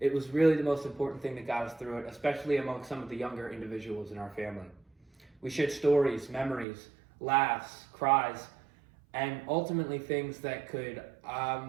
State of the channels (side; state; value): left; drops out; at 6.7 s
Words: was really the most important thing that got us through it, especially among some of the younger individuals in our family. We shared stories, memories, laughs, cries, and ultimately things that could